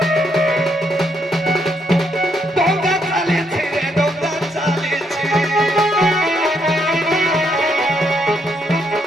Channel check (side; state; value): both; normal; correlation 0.75